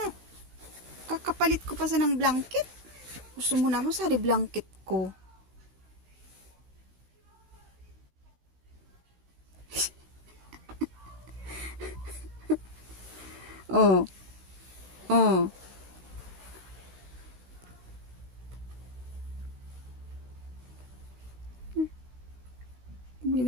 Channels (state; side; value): late; left; 16 ms